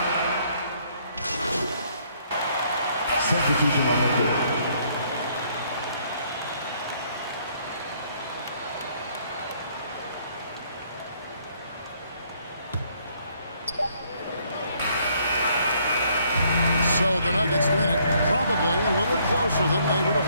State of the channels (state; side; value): inverted; both; correlation -0.66